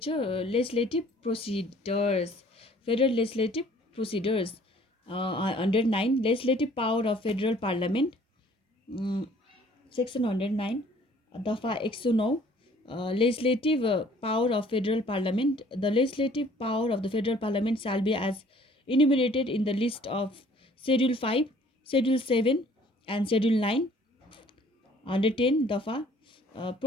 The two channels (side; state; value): both; normal; correlation 0.56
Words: Procedures. Federal Legislative Procedures. Under 9 Legislative Power of Federal Parliament. Mm, Section 109 Dafa 109 Legislative Power of Federal Parliament. The legislative power of the Federal Parliament shall be as enumerated in the list of Schedule 5, Schedule 7 and Schedule 9. Under 10 Dafa